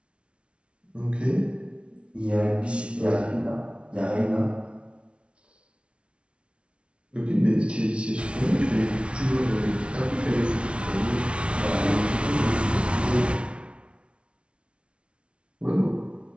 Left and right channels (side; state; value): left; late; 0.059 ms